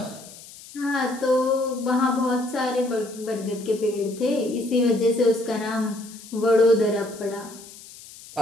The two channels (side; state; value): left; noise; hiss, 18 dB below the sound